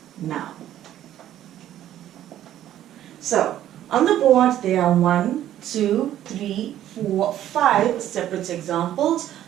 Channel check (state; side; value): quieter; left; 12.1 dB